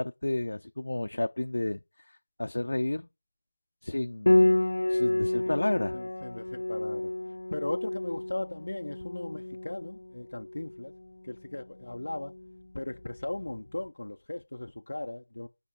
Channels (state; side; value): inverted; both; correlation -1.00